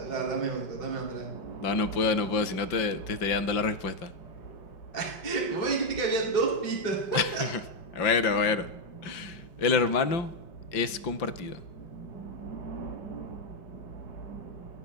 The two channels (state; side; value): late; right; 5.2 ms